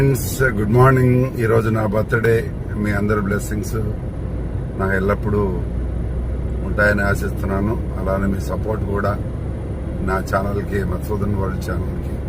good morning. ఈరోజు నా birthday. మీ అందరి బ్లెస్సింగ్స్ నాకు ఎల్లప్పుడూ ఉంటాయని ఆశిస్తున్నాను. అలానే మీ సపోర్ట్ కూడా నా ఛానల్కి, మధుసూదన్ వరల్డ్ ఛానల్కి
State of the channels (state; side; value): identical; both; correlation 1.00